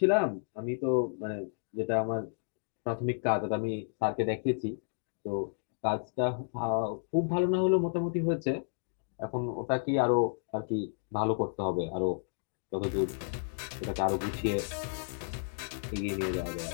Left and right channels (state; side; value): silent; right; digital silence